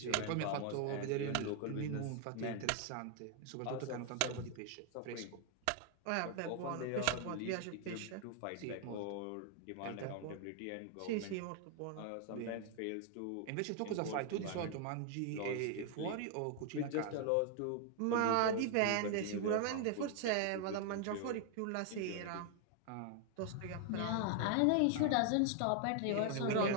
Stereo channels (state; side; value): different; both; correlation 0.00